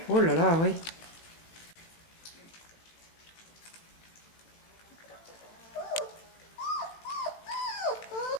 Oh là là, oui.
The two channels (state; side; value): late; right; 18 ms